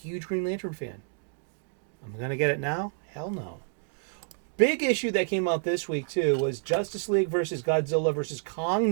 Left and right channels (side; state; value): left; silent; digital silence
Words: Green Lantern fan. I'm gonna get it now? Hell no. Big issue that came out this week too was Justice League versus Godzilla versus Kong